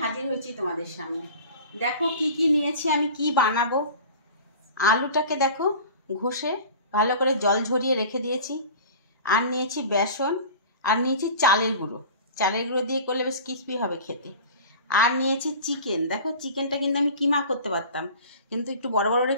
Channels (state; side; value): inverted; both; correlation -0.39